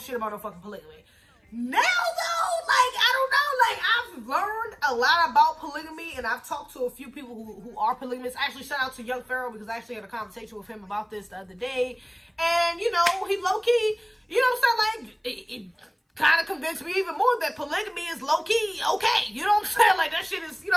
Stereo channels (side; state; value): both; identical; correlation 1.00